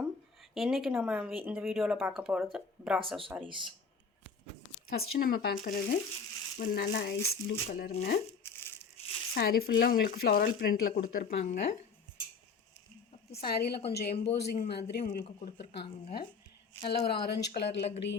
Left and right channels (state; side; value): quieter; right; 5.1 dB